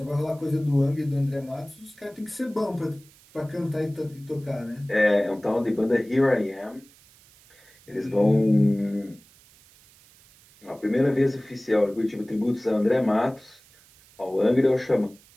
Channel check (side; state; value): right; noise; hiss, 27 dB below the sound